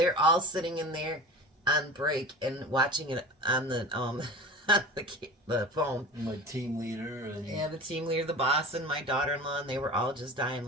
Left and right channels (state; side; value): normal; both; correlation 0.35